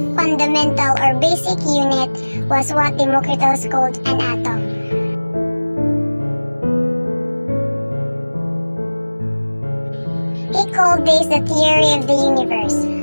fundamental or basic unit was what Democritus called an atom. He called this the theory of the universe.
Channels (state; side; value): inverted; both; correlation -1.00